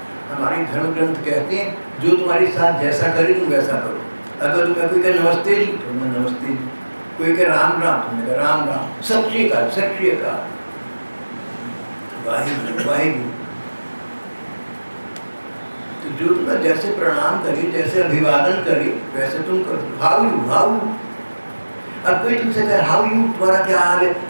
हमारे धर्म ग्रंथ कहते हैं जो तुम्हारे साथ जैसा करे तुम वैसा करो। अगर तुम्हें कोई कहे नमस्ते जी तो मैं नमस्ते जी, कोई कहे राम राम तो मैं राम राम, सत श्री अकाल सत श्री अकाल, वाहिगुरु वाहिगुरु। तो जो तुम्हें जैसे प्रणाम करे, जैसे अभिवादन करे, वैसे तुम करो। How you, how. अब कोई तुमसे कहे हाउ यू, तुम्हारा क्या हाल है,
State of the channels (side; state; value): both; inverted; correlation -1.00